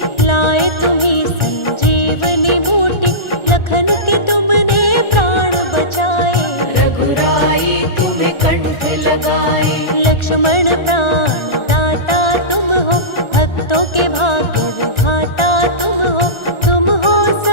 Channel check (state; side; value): late; right; 1.4 ms